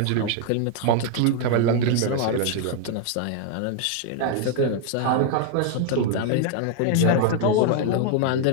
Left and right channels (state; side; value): different; both; correlation 0.00